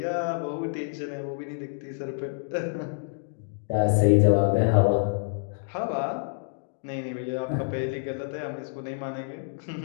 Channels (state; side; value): silent; right; digital silence